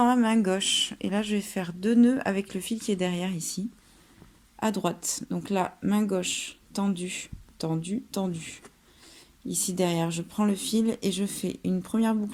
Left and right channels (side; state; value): both; identical; correlation 1.00